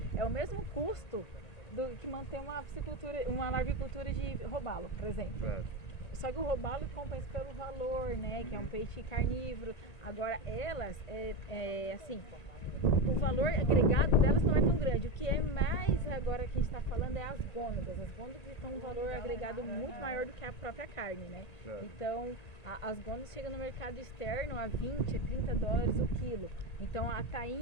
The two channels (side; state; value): right; late; 1.9 ms